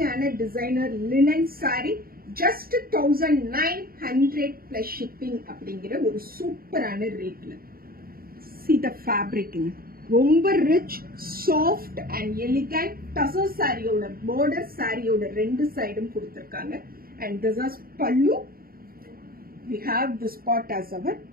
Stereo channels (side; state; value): left; late; 0.43 ms